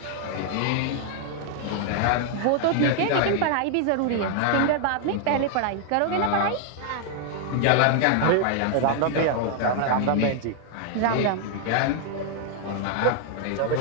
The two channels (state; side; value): different; both; correlation 0.00